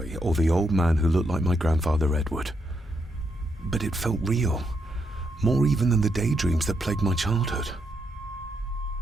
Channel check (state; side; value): normal; both; correlation 0.79